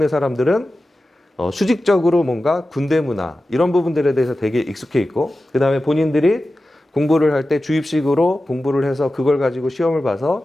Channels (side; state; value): both; normal; correlation 0.94